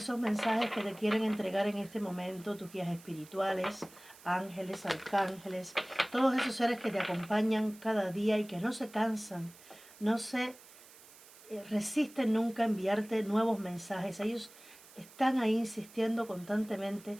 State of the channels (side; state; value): right; noise; hiss, 21 dB below the sound